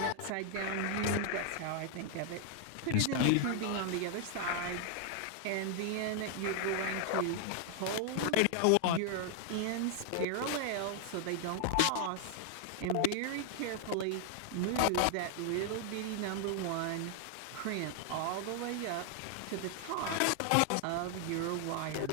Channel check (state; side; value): different; both; correlation 0.00